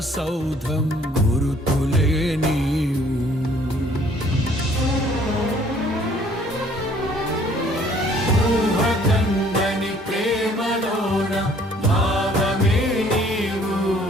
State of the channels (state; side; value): normal; both; correlation 0.58